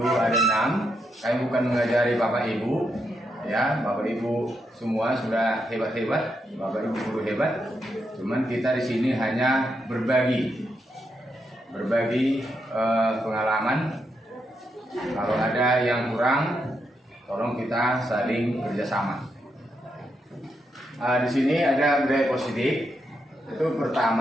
ada 6. Kami bukan mengajari Bapak Ibu, ya, Bapak Ibu semua sudah hebat-hebat, Bapak Ibu guru hebat. Cuman kita di sini hanya berbagi pengalaman. Kalau ada yang kurang, tolong kita saling kerjasama. Di sini ada budaya positif. Itu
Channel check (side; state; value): both; normal; correlation 0.82